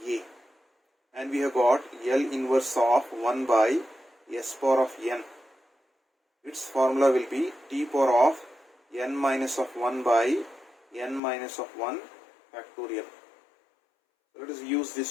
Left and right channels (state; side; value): drops out; right; at 11.2 s